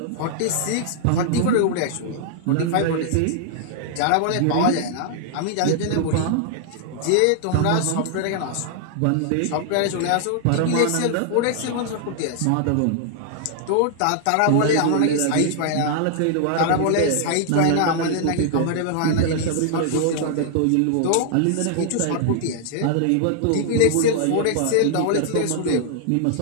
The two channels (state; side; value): different; both; correlation -0.01